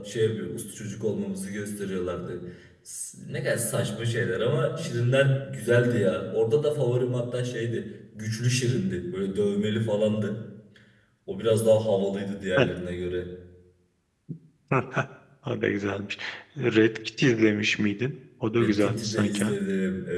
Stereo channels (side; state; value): both; identical; correlation 1.00